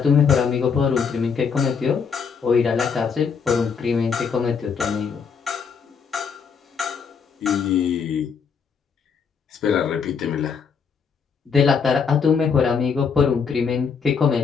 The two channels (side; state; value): right; quieter; 6.1 dB